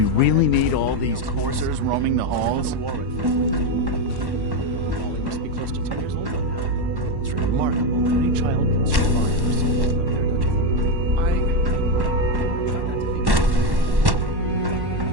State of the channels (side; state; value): left; late; 1.1 ms